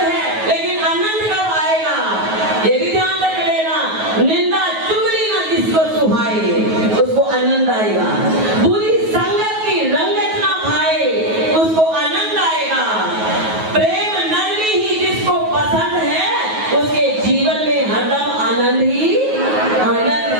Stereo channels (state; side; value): late; left; 9.4 ms